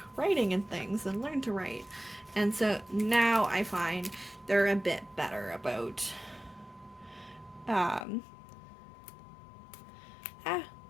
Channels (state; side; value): drops out; right; at 8.1 s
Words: writing and things and learn to write. And so now I find they're a bit better about,